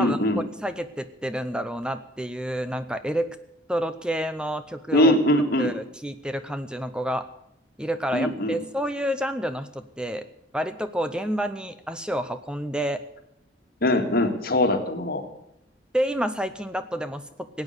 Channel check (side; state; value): both; normal; correlation 0.52